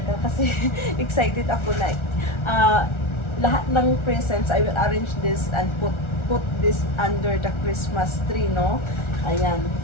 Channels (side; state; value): right; late; 1.4 ms